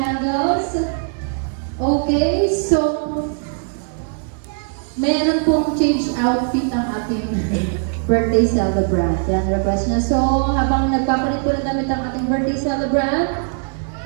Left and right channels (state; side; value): silent; left; 58 dB below the other